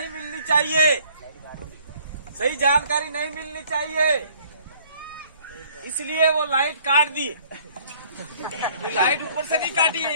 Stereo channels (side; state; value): both; inverted; correlation -0.58